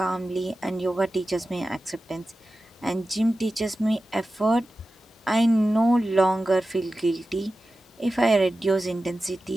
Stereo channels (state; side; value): normal; both; correlation 0.94